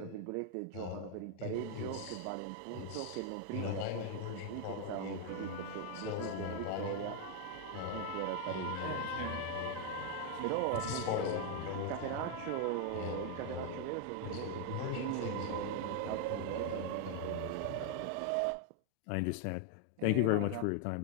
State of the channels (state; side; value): different; both; correlation 0.00